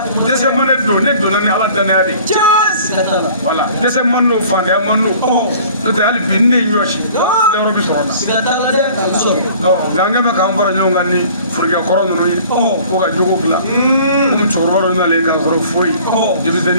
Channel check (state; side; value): inverted; both; correlation -0.50